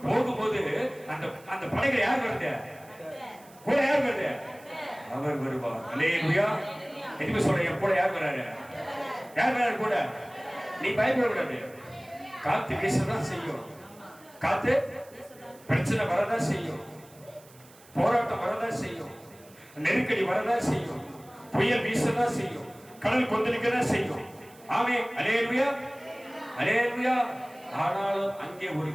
போகும்போது அந்த படகுல யார் வருது? கூட யார் வருது? அவர் வருவார். அல்லேலூயா. எதுக்கு சொல்றேன்? என் கூட யார் வராரு? யார் வராரு கூட? நீ பயப்படக்கூடாது. காத்து வீசதான் செய்யும். காத்து பிரச்சனை வரதான் செய்யும். போராட்டம் வரதான் செய்யும். நெருக்கடி வரதான் செய்யும். புயல் வீசதான் செய்யும். கடல் கொந்தளிக்கதான் செய்யும். ஆமென், அல்லேலூயா, அல்லேலூயா. ஆனாலும் அங்கே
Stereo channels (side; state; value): right; noise; hiss, 25 dB below the sound